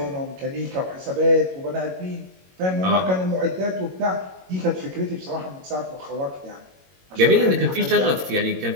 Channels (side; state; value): left; late; 22 ms